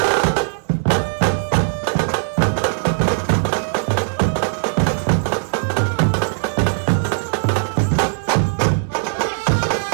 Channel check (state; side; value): silent; left; digital silence